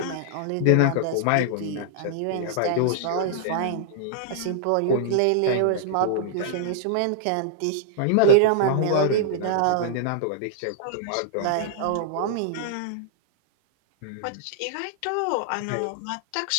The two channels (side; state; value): both; different; correlation -0.01